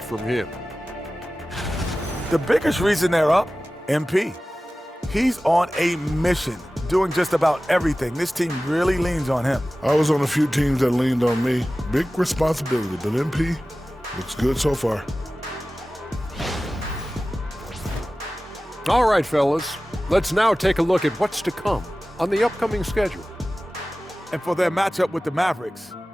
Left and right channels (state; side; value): normal; both; correlation 0.96